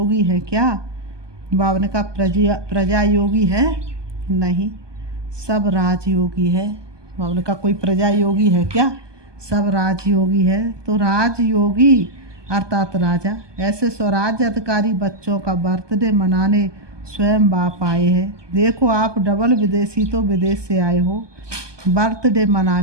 है क्या? बाबा ने कहा प्रजा योगी है नहीं, सब राजयोगी है। बाबा ने कहा कोई प्रजा योगी है क्या? सब राजयोगी है। तो राजयोगी अर्थात राजा, ऐसे स्वराज्य अधिकारी बच्चों का बर्थडे मनाने स्वयं बाप आए हैं। देखो आप डबल विदेशी तो विदेश से आए हो बर्थडे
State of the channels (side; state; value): left; late; 1.2 ms